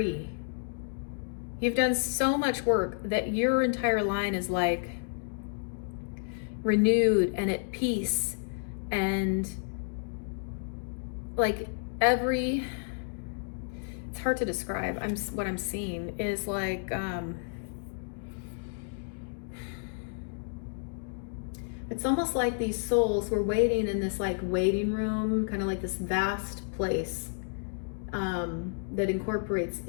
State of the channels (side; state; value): right; silent; digital silence